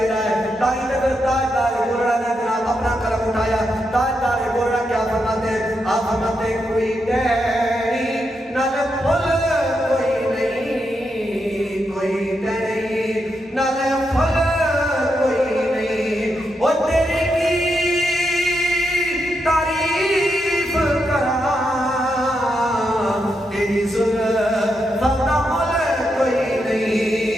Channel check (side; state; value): both; normal; correlation 0.83